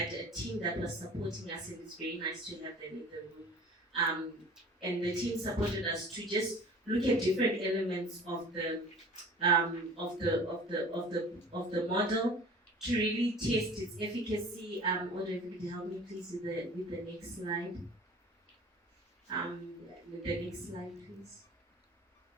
a team that was supporting us, and it's very nice to have them in the room. And the team supported us to just look at different elements of the model to really test its efficacy. Audrey, if you could help me please with the next slide. With the next slide, please.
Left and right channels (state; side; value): normal; both; correlation 0.43